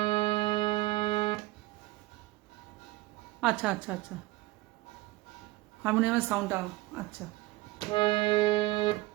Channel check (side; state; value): left; quieter; 20.0 dB